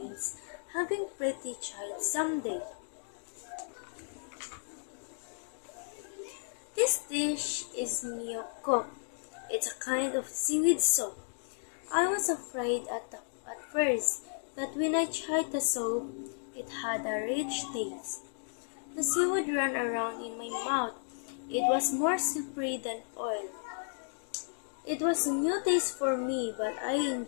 having pretty child someday. This dish is myeokguk. It's a kind of seaweed soup. I was afraid at first, but when I tried the soup, it had a rich taste. The seaweed ran around in my mouth. It was more slippery than oil. It was a new taste for me, but I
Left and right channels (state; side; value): silent; right; digital silence